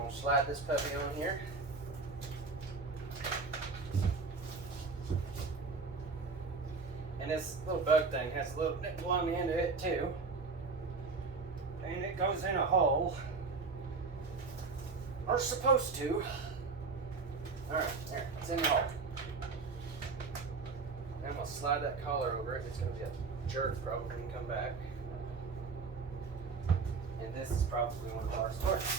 to slide this puppy on here. And this little bug thing has a little nipple on the end of it too. And it goes in a hole. Or supposed to. Alright, there, it's in the hole. Then I'm going to slide that collar over it. It's going to be a jerk probably when you come back. And this is probably one of our stores.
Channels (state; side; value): quieter; left; 4.4 dB